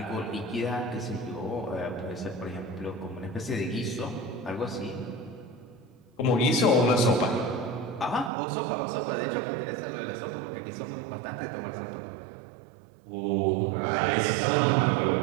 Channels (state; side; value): drops out; left; at 8.3 s